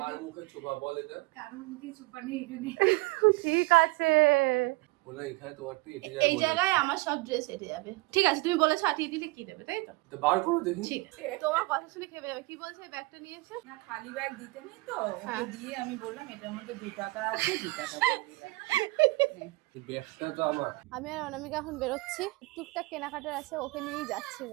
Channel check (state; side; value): quieter; left; 23.5 dB